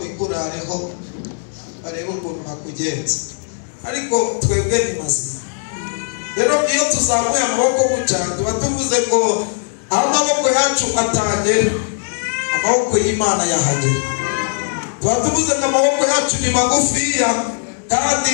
kurareho bareba ukuntu bakugenza ariko twebwe ni mazima rero iyo tuzamuye amaboko gutya tuba tuvuze ngo aho amaboko yacu atagera amaboko y'Imana yahagera tuba tuvuze ngo amaboko yacu ni magufiya kandi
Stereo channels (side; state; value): right; silent; digital silence